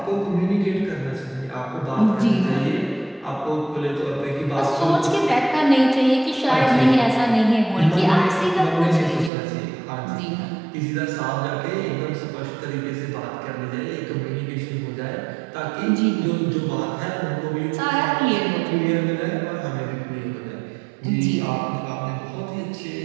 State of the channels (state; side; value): drops out; left; at 9.3 s